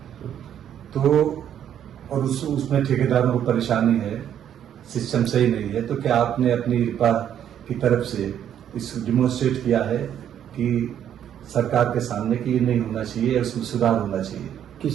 तो और उसमें ठेकेदारों को परेशानी है, सिस्टम सही नहीं है, तो क्या आपने अपनी रिपा की तरफ से इस डिमोन्स्ट्रेट किया है कि सरकार के सामने कि ये नहीं होना चाहिए, इसमें सुधार होना चाहिए?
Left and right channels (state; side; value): quieter; left; 9.9 dB